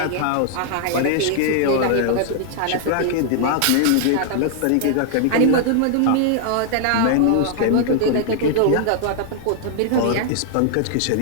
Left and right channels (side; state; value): both; different; correlation -0.01